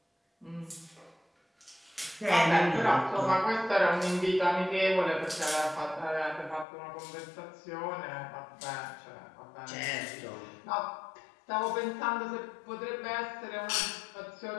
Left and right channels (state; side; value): drops out; right; at 6.7 s